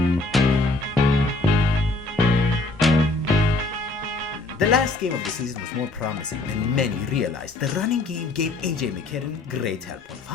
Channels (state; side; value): quieter; right; 3.0 dB